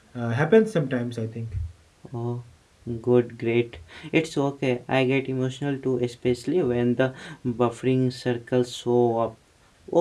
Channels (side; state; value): both; identical; correlation 1.00